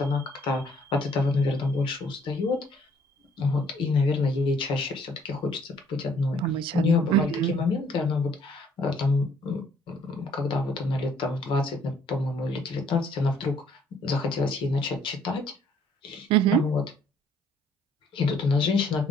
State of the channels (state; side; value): normal; both; correlation 0.62